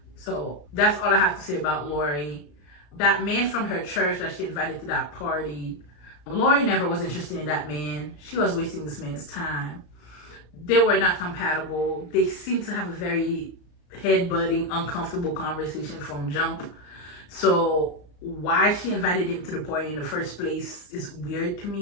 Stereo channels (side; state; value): right; late; 34 ms